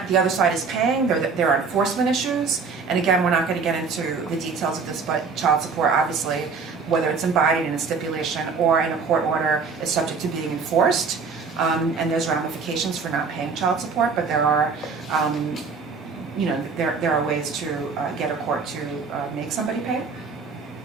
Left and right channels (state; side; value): quieter; left; 5.0 dB